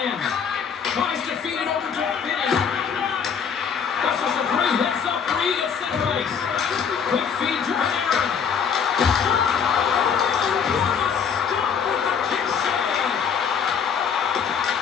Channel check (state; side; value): quieter; right; 7.0 dB